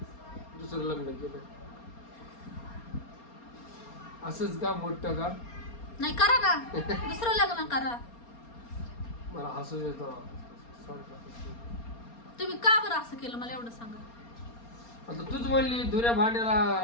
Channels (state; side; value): late; right; 4.3 ms